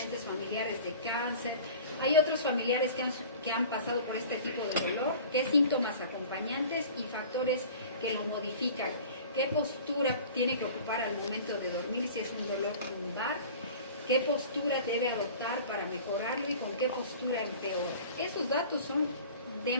familiares de cáncer? ¿Hay otros familiares que han pasado por este tipo de dolor? ¿Qué síntomas acompañantes y factores que lo modifican? ¿Qué postura tiene que ocupar al momento de dormir si es un dolor lumbar? ¿Qué postura debe adoptar para mejorarlo y con qué postura empeora? Esos datos son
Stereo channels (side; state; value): both; inverted; correlation -0.42